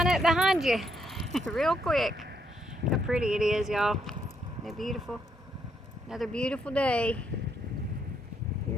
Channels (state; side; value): normal; both; correlation 0.75